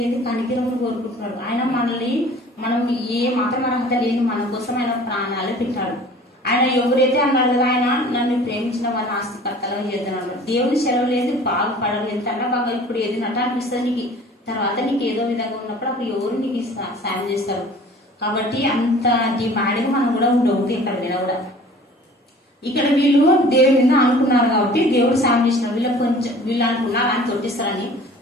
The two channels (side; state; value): both; normal; correlation 0.47